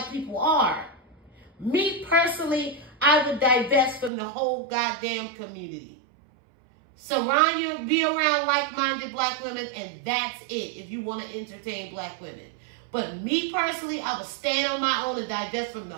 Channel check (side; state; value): left; drops out; at 4.1 s